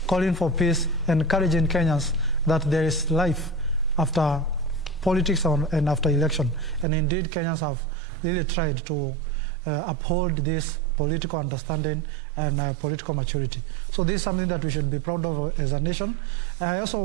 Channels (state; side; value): drops out; left; at 6.9 s